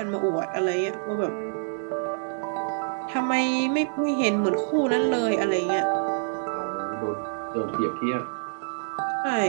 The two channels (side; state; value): left; silent; digital silence